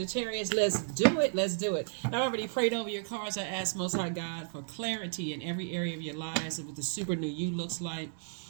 Let's do it. Let's do it. I already prayed over your cards. I asked Most High God for clarity in every area of your lives of what the super new you looks like.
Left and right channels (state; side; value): silent; left; 56 dB below the other